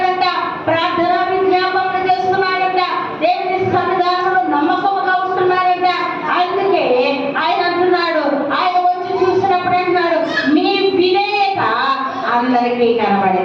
ప్రార్థన విజ్ఞాపనలు చేస్తున్నారంట. దేవుని సన్నిధానంలో నమ్మకంగా ఉంటున్నారంట. అందుకే ఆయన అంటున్నాడు, ఆయన వచ్చి చూసినప్పుడు అంటున్నాడు, మీ విధేయత అందరికీ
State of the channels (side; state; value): both; identical; correlation 1.00